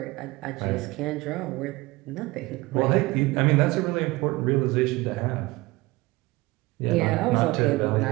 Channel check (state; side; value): quieter; left; 21.5 dB